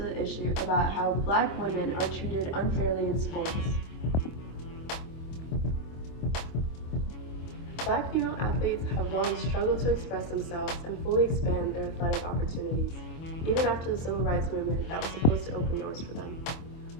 issue about how Black women are treated unfairly in sports. Black female athletes have long struggled to express themselves and fully expand their athletic opportunities, even after the civil rights movement that was supposed to open doors for them.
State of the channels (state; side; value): late; right; 25 ms